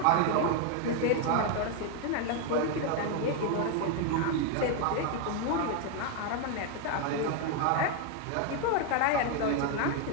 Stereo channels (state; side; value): different; both; correlation 0.01